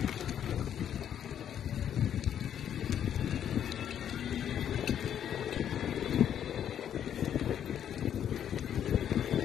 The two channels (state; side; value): quieter; right; 9.6 dB